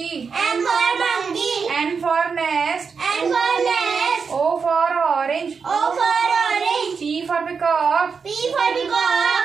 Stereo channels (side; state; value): left; quieter; 5.6 dB